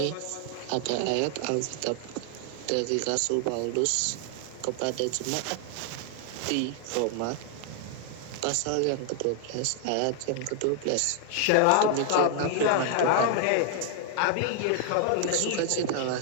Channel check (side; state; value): both; different; correlation 0.00